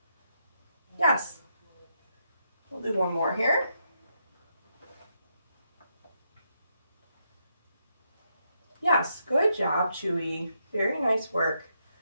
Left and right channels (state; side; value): inverted; both; correlation -0.79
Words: Yes. We'll do one more here. Yes, good job, Chewie. Very nice work.